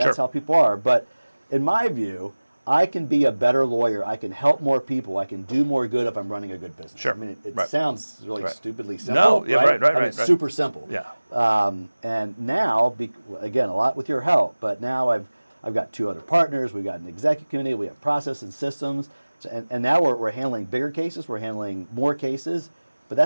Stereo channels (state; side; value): inverted; both; correlation -1.00